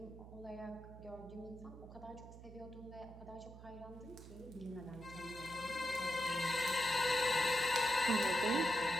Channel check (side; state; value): right; noise; hum, 15 dB below the sound